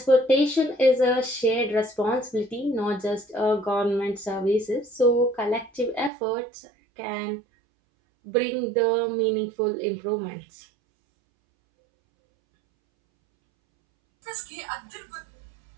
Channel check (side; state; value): left; drops out; at 6.1 s